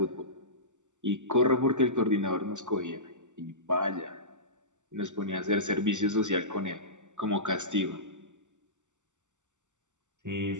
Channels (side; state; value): left; late; 0.85 ms